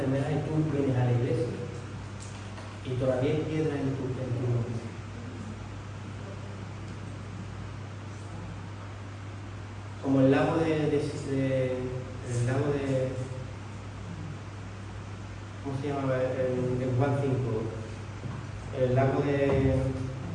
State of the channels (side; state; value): both; identical; correlation 1.00